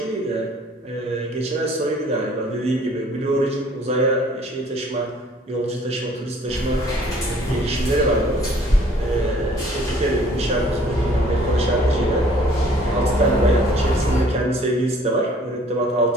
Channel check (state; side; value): normal; both; correlation 0.56